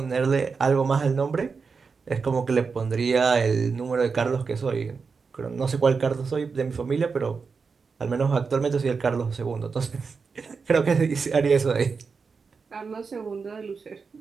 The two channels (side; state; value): left; quieter; 5.1 dB